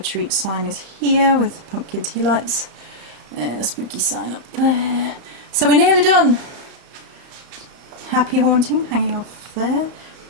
sign is here with pumpkin tea lights. A spooky sign up there. So we're nearly done. Happy haunting hanging off there.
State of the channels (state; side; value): late; left; 34 ms